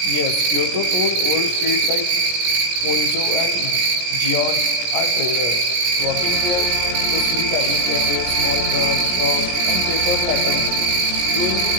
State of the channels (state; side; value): late; left; 17 ms